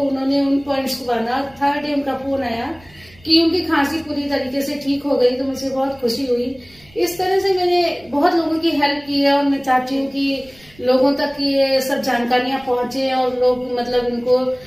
उन्होंने उन पॉइंट्स को बांधा। 3rd डे उनका फोन आया कि उनकी खांसी पूरी तरीके से ठीक हो गई। तो मुझे बहुत खुशी हुई। इस तरह से मैंने बहुत लोगों की हेल्प की है और मैं चाहती हूँ कि लोगों तक ये सब जानकारियां पहुंचे और लोग मतलब इनको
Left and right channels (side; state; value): right; noise; rumble, 27 dB below the sound